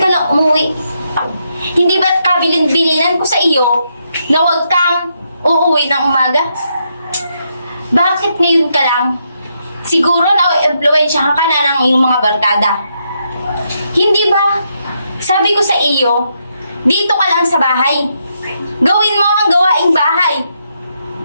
lang umuwi? Hindi ba't kabilin-bilinan ko sa iyo na huwag kang uuwi ng umaga? Bakit ngayon ka lang? Siguro na-influensya ka na ng iyong mga barkada. Hindi ba? Sabi ko sa iyo, dito ka lang sa bahay. Gawin mo ang gawaing bahay.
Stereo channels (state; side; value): inverted; both; correlation -0.79